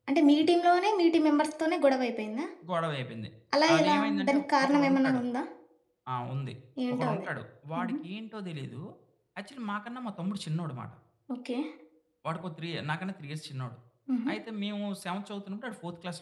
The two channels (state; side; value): identical; both; correlation 1.00